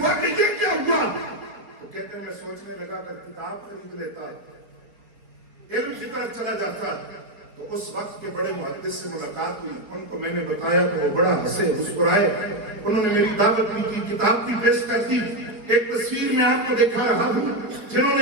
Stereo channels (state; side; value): late; left; 4.5 ms